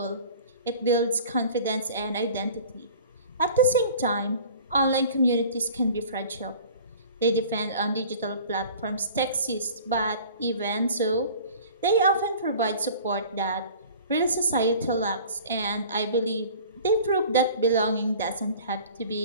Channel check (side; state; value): both; inverted; correlation -0.45